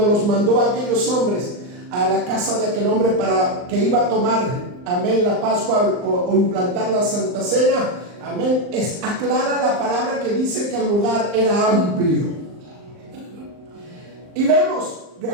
los mandó a aquellos hombres a la casa de aquel hombre para que iba a tomar, amén, la Pascua o implantar la Santa Cena, amén, aclara la palabra que dice que el lugar era amplio. Y vemos,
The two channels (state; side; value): late; left; 39 ms